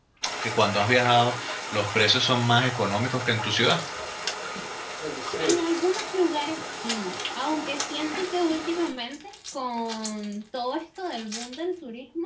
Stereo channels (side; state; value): both; identical; correlation 1.00